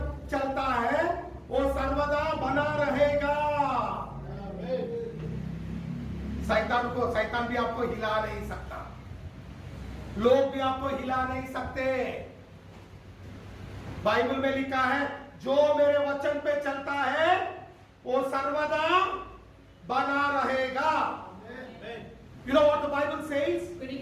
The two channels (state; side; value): identical; both; correlation 1.00